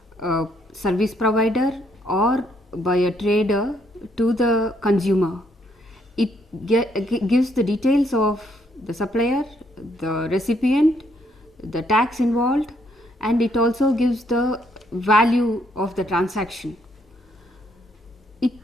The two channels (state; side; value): normal; both; correlation 0.71